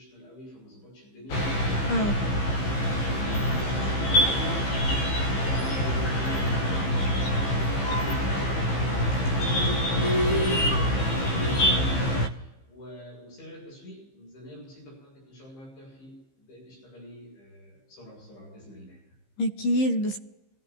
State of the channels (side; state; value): right; late; 15 ms